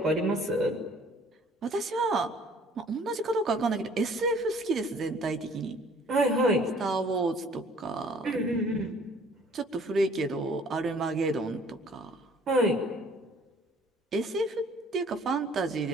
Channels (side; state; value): both; normal; correlation 0.55